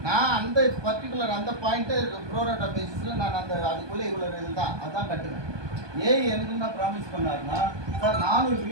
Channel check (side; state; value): left; late; 1.2 ms